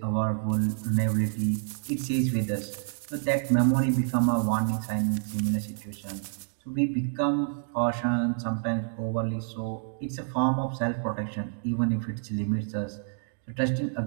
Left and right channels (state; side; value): silent; left; digital silence